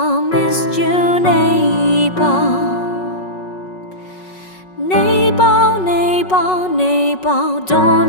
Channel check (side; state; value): right; late; 5.4 ms